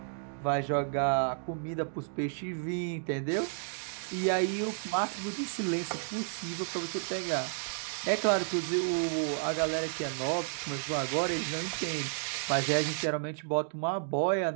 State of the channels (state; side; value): silent; left; digital silence